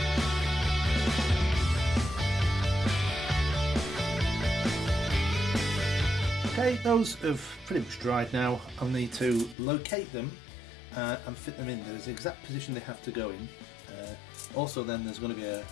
Okay, those have pretty much dried now. I'll need to locate them and fit them in. There's the exact position they have to go in. Also then there's going to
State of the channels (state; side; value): drops out; right; at 9.6 s